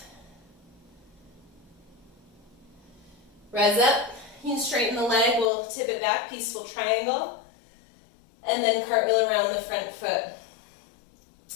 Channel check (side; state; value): right; drops out; at 5.5 s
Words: Rise up. You can straighten the leg. We'll tip it back, peaceful triangle. And then cartwheel around the front foot.